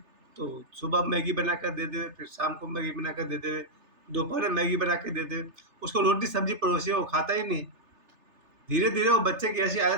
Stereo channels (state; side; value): late; left; 3.3 ms